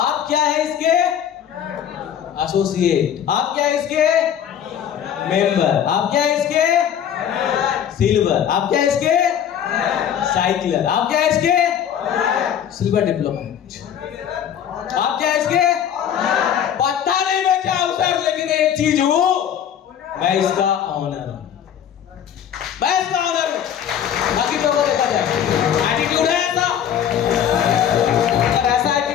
क्या है इसके? एसोसिएट। आप क्या है इसके? मेंबर। आप क्या है इसके? सिल्वर। आप क्या है इसके? साइकिलर। आप क्या है इसके? Silver diplomat. आप क्या है इसके? पता नहीं मैं क्या हूं सर, लेकिन एक चीज हूं, मैं इसका ऑनर हूं, मैं इसका ऑनर हूं। बाकी तो देखा जाए, एटीट्यूड है ऐसा, अगर ऐसा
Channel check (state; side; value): quieter; right; 9.3 dB